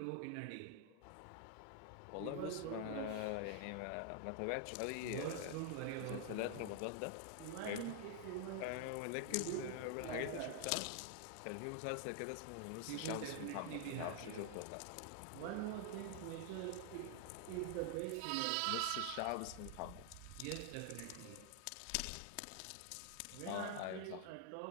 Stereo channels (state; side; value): different; both; correlation 0.00